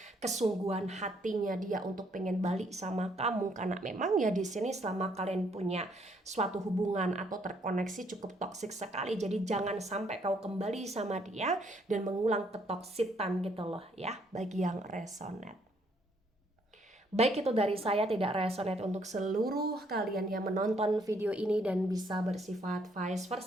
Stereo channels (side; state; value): both; normal; correlation 0.68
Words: kesungguhan hatinya dia untuk pengen balik sama kamu. Karena memang ya di sini selama kalian punya suatu hubungan atau terkoneksi cukup toksik sekali. Jadi jangan sampai kau kembali sama dia dan mengulang ketoksitan gitu loh ya, bagi yang resonate. Baik, itu dari saya, tidak resonate untuk seluruh kalian yang menonton video ini dan bisa bersifat vice